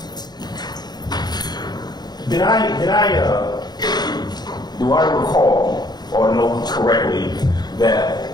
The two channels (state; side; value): late; right; 0.20 ms